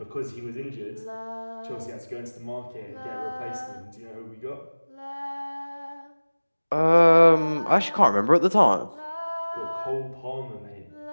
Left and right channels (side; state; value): both; inverted; correlation -1.00